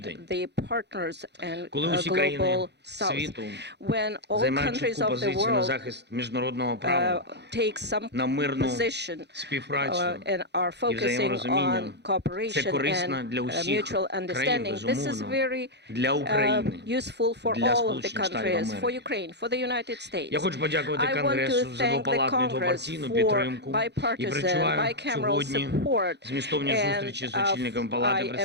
the partners and Коли усі країни global south. світу When all займають countries чітку of the позицію на world захист міжнародного права, take some на мирну position співпрацю and are і focusing взаєморозуміння, on це cooperation корисно and для усіх mutual країн, understanding. This is безумовно, very для України, useful for для all of the Сполучених Штатів countries, for Америки. Ukraine, for the United States. Я хочу подякувати I want to Конгресу за thank the двопалатну і Congress двопартійну for підтримку і bipartisan, перечуваю bicameral сьогодні support. змістовні And зустрічі з очільниками Палати I am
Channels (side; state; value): left; late; 0.50 ms